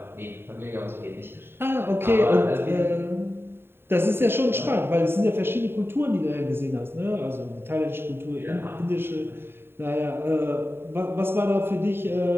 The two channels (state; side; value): late; left; 0.11 ms